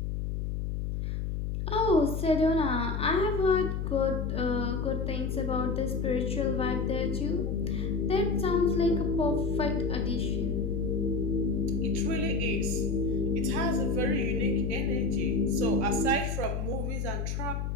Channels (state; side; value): noise; left; hum, 2 dB below the sound